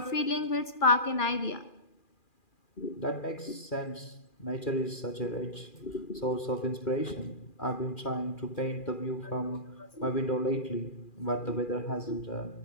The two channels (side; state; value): right; late; 2.4 ms